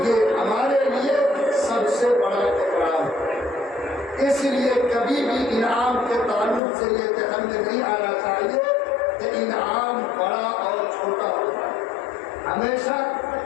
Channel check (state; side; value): drops out; right; at 6.6 s